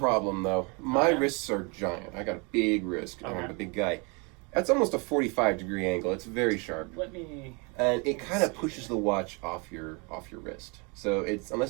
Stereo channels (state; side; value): quieter; left; 31.0 dB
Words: though. My wrists are giant. I got a big wrist. I'm a big guy. That's almost a 45-degree angle. It's very sharp. And it kind of pushes the watch off your wrist. So it's